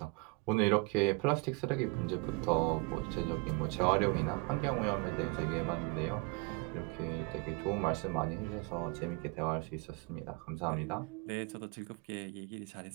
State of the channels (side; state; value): left; quieter; 28.8 dB